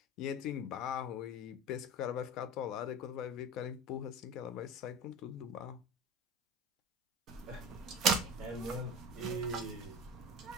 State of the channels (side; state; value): both; normal; correlation 0.32